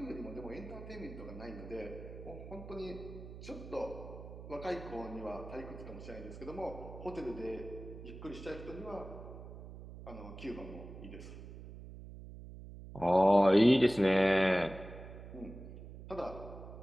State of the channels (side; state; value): right; noise; hum, 13 dB below the sound